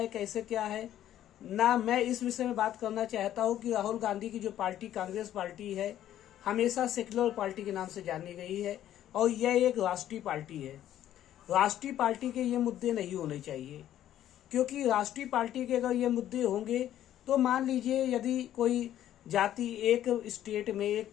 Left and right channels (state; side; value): quieter; right; 11.9 dB